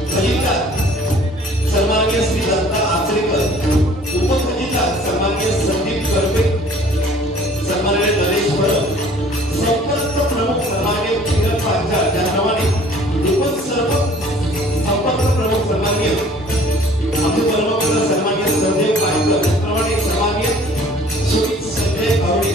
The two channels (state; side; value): normal; both; correlation 0.53